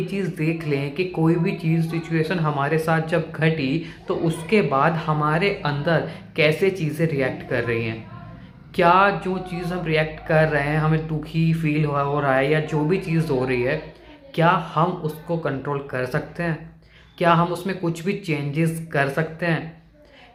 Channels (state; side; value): identical; both; correlation 1.00